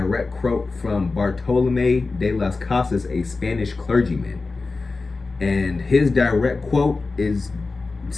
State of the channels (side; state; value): right; quieter; 3.8 dB